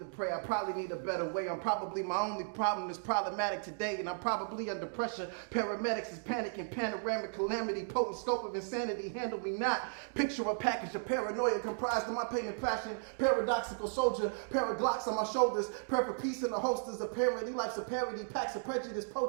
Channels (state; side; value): silent; left; digital silence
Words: pray. I probably need a better way. I'm probably my only problem is problematic today, and I'm probably under pressure. Paramedics is panicking, panoramic calamity, potent scope of insanity. Handle me not. Picture a package of paranoia comprised of my pain and passion. Paradoxical soldier, paraglocks on my shoulders. Prayer for peace in the holsters. Apparently life's a parody. Packs of prejudice,